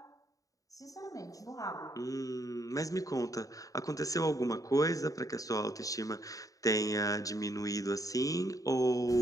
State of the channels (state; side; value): late; right; 0.16 ms